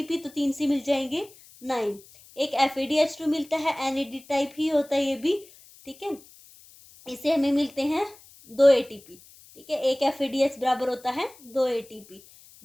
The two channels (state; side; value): noise; left; hiss, 24 dB below the sound